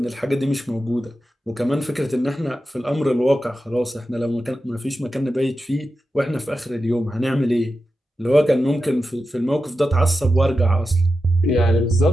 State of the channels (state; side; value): normal; both; correlation 0.91